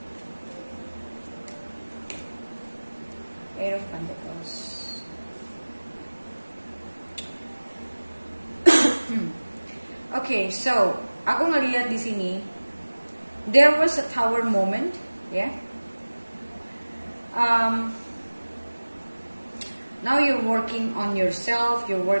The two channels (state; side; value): inverted; both; correlation -1.00